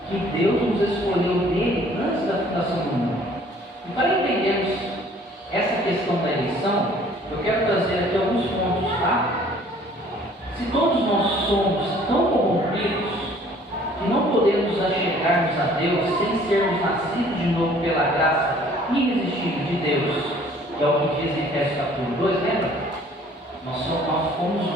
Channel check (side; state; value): both; normal; correlation 0.55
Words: que Deus nos escolheu nele antes da fundação do mundo. E para entendermos essa questão da eleição, eu quero trazer aqui alguns pontos, tá? Se todos nós somos tão corrompidos que não podemos achegar-nos a Deus sem sermos nascidos de novo pela graça irresistível de Deus, que é o que diz em Efésios capítulo 2, lembra? Nós